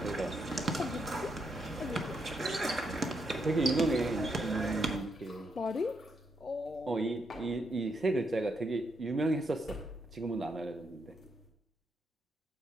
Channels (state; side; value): normal; both; correlation 0.79